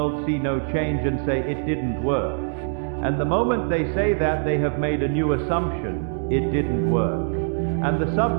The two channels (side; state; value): left; silent; digital silence